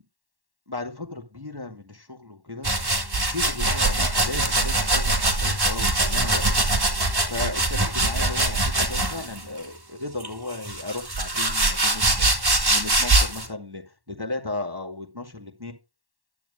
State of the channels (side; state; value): left; late; 1.1 ms